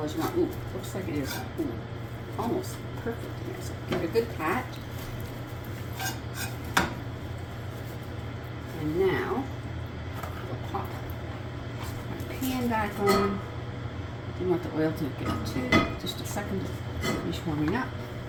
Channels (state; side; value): identical; both; correlation 1.00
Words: as you want. Ooh, looks like it is almost perfect in there. So give it a good pat. And now we'll pop my pan back on. You want the oil to get to just a second to finish warming up.